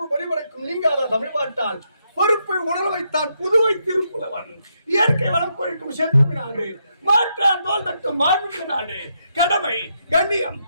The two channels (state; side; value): inverted; both; correlation -0.79